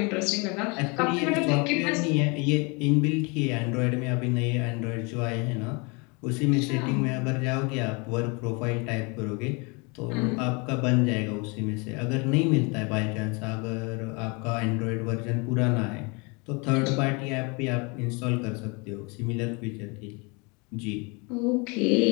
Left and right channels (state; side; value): quieter; right; 30.0 dB